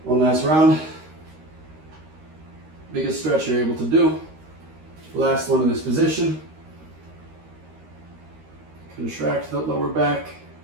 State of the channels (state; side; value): late; left; 13 ms